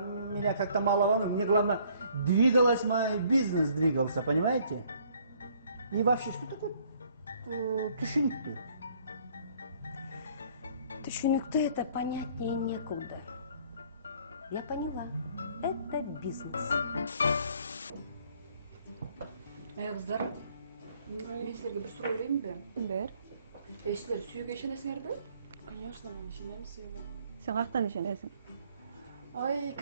меня как-то мало волнует. Мне главное, двигалась мой бизнес, двигался, понимаете? И вообще, что такое түшүнүктүү? Түшүнүктүү это понятнее некуда. Я поняла. Это бизнес. Кыздар, мен силерге бир суроо берейинби? Бер. Силер сүйүүгө ишенесиңерби? Конечно, мен ишенем сүйүүгө. Сен каяктан ишенесиң? Ой,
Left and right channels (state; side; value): inverted; both; correlation -0.61